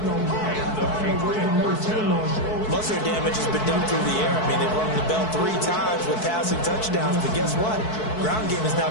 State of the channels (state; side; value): late; right; 4.6 ms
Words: Most of their damage has been done through the air. I mean, they've rung the bell 3 times with passing touchdowns, but guess what? Ground game has